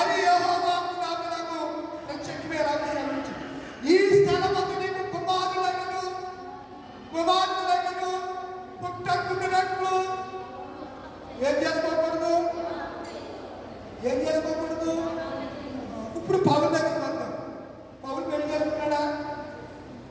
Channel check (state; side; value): identical; both; correlation 1.00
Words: యెహోవా నాకు ప్రత్యక్షమే ఎలాగ సెలవించాడు, ఈ స్థలమందు నీకు కుమారులైనను పుట్టకుండానట్లు ఏం చేసుకోకూడదు. ఇప్పుడు పౌలు దగ్గర వద్దాం. పౌలు పెళ్లి చేసుకున్నాడా?